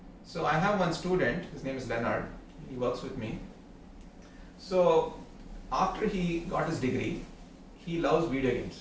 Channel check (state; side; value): identical; both; correlation 1.00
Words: So I have one student, his name is Leonard, he works with me. So after he got his degree, he loves video